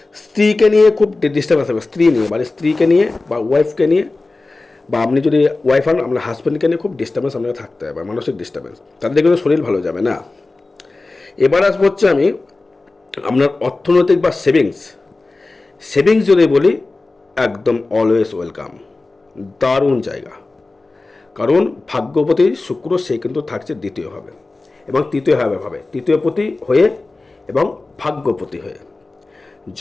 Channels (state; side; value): quieter; right; 3.4 dB